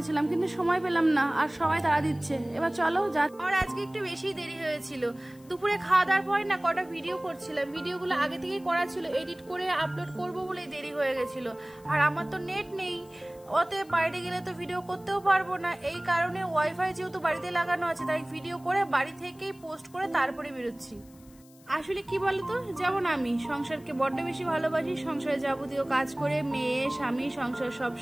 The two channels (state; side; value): noise; left; hiss, 27 dB below the sound